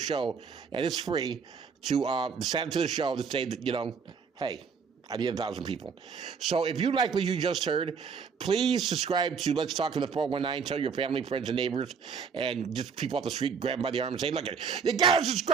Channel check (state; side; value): quieter; left; 6.0 dB